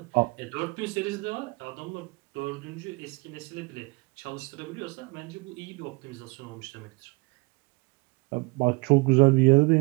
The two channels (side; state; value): left; quieter; 26.4 dB